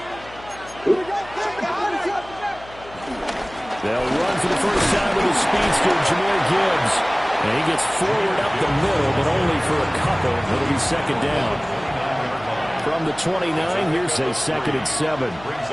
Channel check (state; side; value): noise; left; hum, 20 dB below the sound